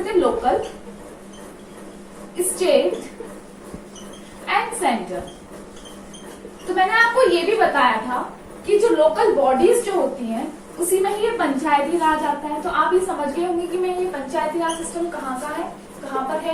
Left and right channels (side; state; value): both; identical; correlation 1.00